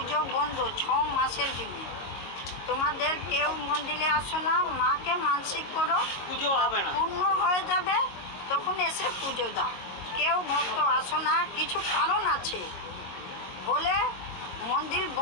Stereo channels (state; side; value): late; right; 22 ms